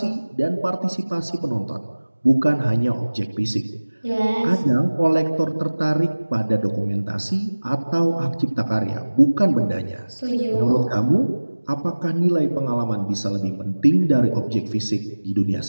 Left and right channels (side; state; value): both; inverted; correlation -1.00